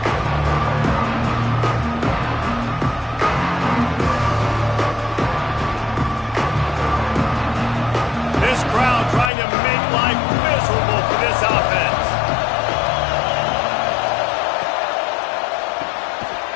This crowd trying to make life miserable for this offense.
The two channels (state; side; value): drops out; right; at 9.3 s